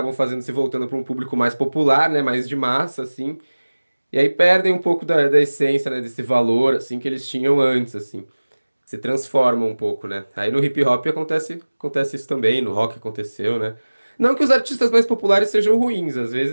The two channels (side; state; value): both; inverted; correlation -1.00